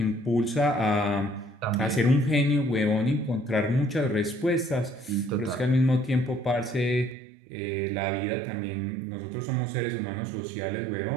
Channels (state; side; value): drops out; left; at 7.2 s